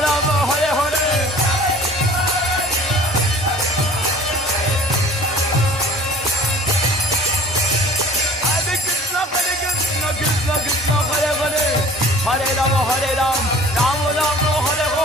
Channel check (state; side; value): normal; both; correlation 0.48